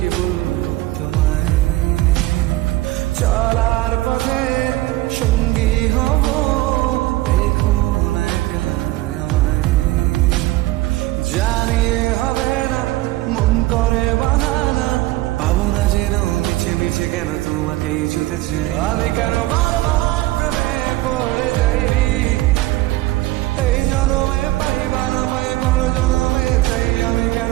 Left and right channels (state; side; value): quieter; left; 18.0 dB